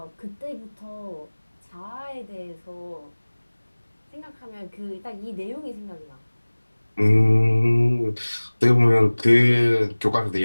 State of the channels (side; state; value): both; inverted; correlation -1.00